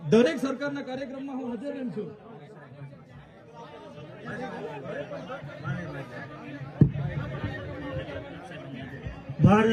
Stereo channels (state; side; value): identical; both; correlation 1.00